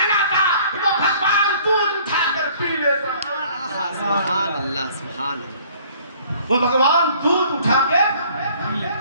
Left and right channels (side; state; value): both; inverted; correlation -0.55